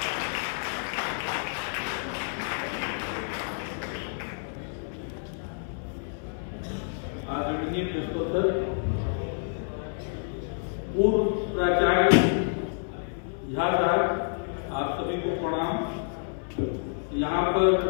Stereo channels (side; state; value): right; silent; 59 dB below the other